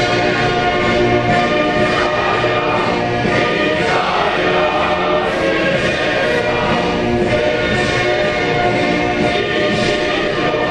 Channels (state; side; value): identical; both; correlation 1.00